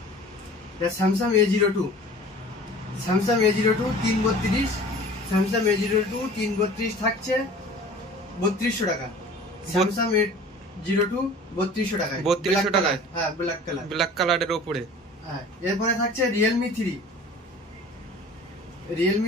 Samsung A02, Samsung A02 332, Samsung A02 332 থাকছে 3200 টাকা। স্যামসাং A02 3200 টাকায়। 3200 টাকায়? হ্যাঁ, ব্ল্যাক কালারের উপরে। হ্যাঁ, এরপরে থাকছে Realme 3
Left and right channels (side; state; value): both; normal; correlation 0.44